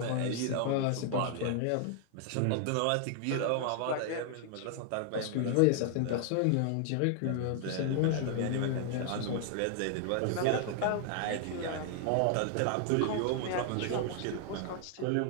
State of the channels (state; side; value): different; both; correlation 0.00